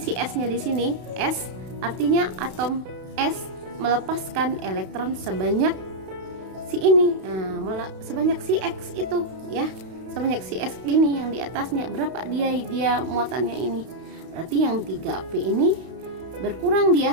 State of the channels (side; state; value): left; late; 32 ms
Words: S-nya di sini. S artinya atom S melepaskan elektron sebanyak si ini. Nah, sebanyak si X itu ya. Sebanyak si S ini yang di atasnya. Berapa dia muatannya ini? Berarti yang 3P ini berkurang